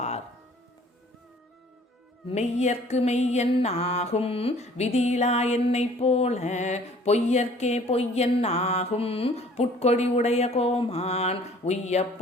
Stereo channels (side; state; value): both; normal; correlation 0.53